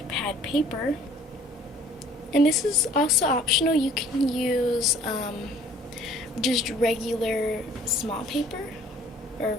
pad paper, and this is also optional. You can use just regular small paper or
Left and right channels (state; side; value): normal; both; correlation 0.55